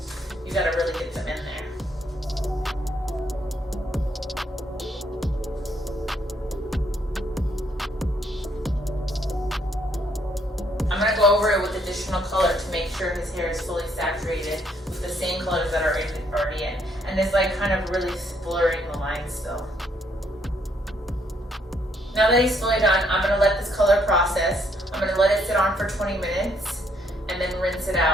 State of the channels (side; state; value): both; normal; correlation 0.70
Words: You hair is fully saturated with the same colors that are already in. And it's like kind of really blurring the lines still. Now that he's fully done, I'm gonna let this color process. I'm gonna let it sit on for 20 minutes and then rinse it